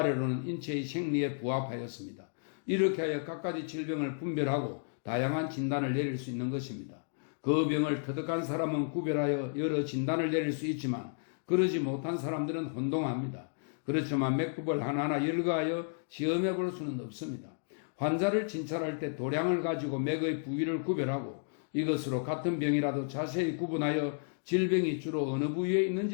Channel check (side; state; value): right; silent; digital silence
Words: 인체의 생리에 부합하였습니다. 이렇게 하여 각가지 질병을 분별하고 다양한 진단을 내릴 수 있는 것입니다. 그 병을 터득한 사람은 구별하여 여러 진단을 내릴 수 있지만 그러지 못한 사람들은 혼동합니다. 그렇지만 맥법을 하나하나 열거하여 시험해 볼 수는 없습니다. 환자를 진찰할 때 도량을 가지고 맥의 부위를 구별하고 이것으로 같은 병이라도 자세히 구분하여 질병이 주로 어느 부위에